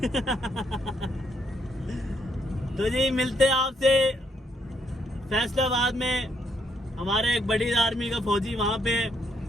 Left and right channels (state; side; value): normal; both; correlation 0.74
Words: तो जी मिलते हैं आपसे फैसलाबाद में। हमारे एक बड़ी आर्मी का फौजी वहाँ पे,